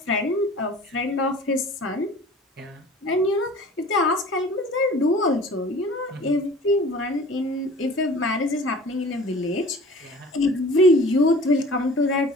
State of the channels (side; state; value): both; normal; correlation 0.44